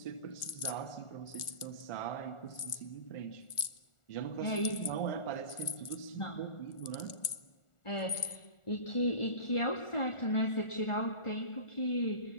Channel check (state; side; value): late; right; 1.4 ms